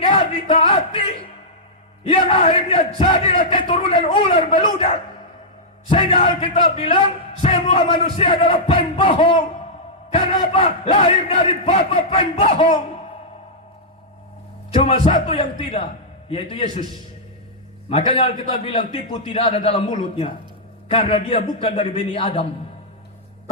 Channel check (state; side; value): normal; both; correlation -0.10